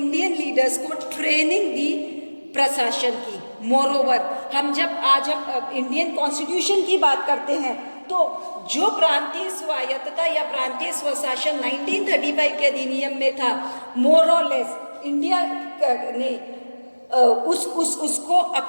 लीडर्स को ट्रेनिंग दी प्रशासन की। मोरओवर, हम जब इंडियन कॉन्स्टिट्यूशन की बात करते हैं तो तो जो प्रांतीय स्वायत्तता या प्रांतीय स्वशासन 1935 के अधिनियम में था, मोर और लेस इंडिया ने उसको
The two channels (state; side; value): inverted; both; correlation -1.00